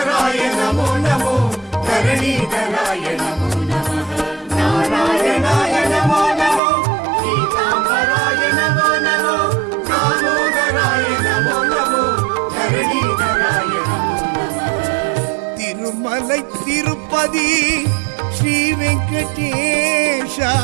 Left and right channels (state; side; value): drops out; left; at 6.6 s